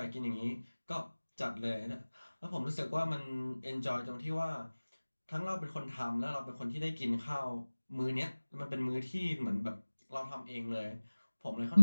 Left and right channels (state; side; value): inverted; both; correlation -1.00